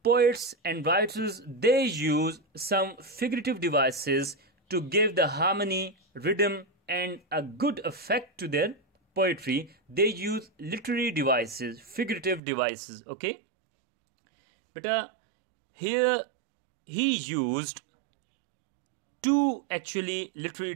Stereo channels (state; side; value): drops out; left; at 12.4 s